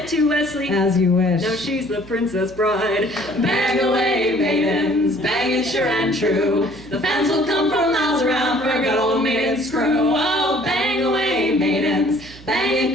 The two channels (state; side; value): noise; right; hum, 20 dB below the sound